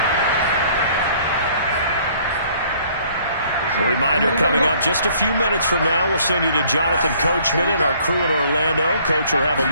A reminder coming up just a few minutes from now. We'll send you to Jonathan Coachman and our crew in Orlando. Coach will have a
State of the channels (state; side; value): inverted; both; correlation -0.58